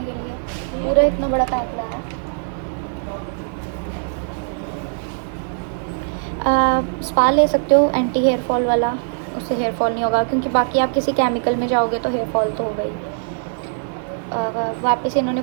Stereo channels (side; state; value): left; silent; 58 dB below the other